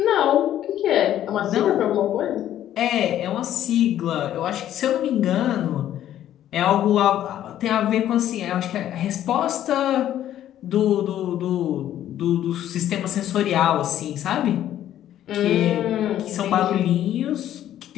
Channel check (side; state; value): right; quieter; 11.8 dB